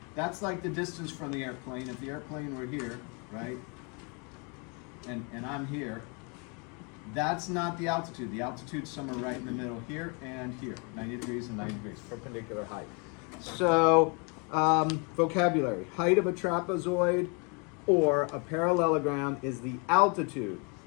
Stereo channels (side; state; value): right; quieter; 34.0 dB